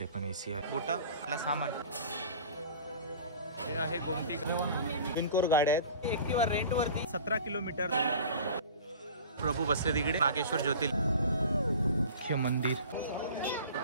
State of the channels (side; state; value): both; inverted; correlation -0.40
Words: पण एसी आहे. बोटा आपला सामान हे आहे गोमती बिनकोर गाड्या आहेत. एक्टिवा रेंट वरती 17 किलोमीटर. प्रभू बसले तिकडे. नागेश्वर ज्योतिर्लिंग मंदिर.